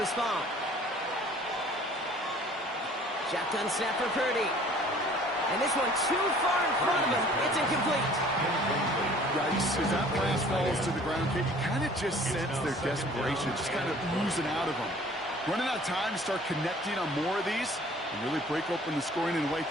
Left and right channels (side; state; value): both; normal; correlation 0.52